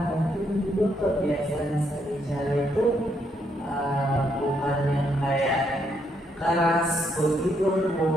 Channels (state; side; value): normal; both; correlation 0.75